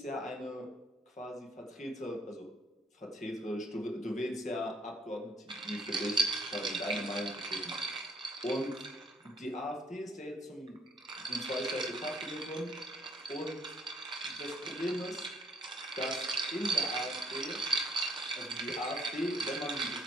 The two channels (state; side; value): normal; both; correlation 0.65